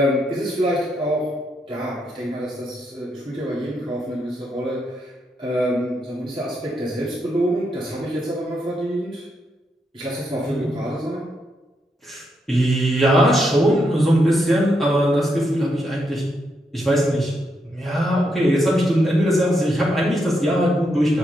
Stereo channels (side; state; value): both; normal; correlation 0.80